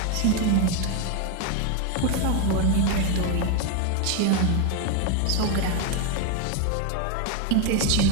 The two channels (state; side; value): different; both; correlation 0.01